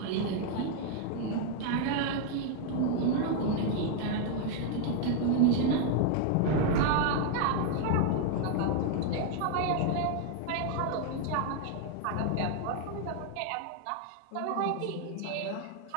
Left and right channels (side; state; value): both; different; correlation 0.00